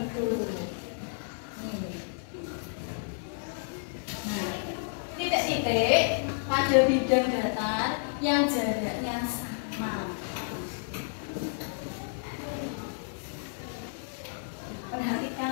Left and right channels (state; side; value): silent; right; digital silence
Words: Nah, titik-titik pada bidang datar yang jaraknya sama.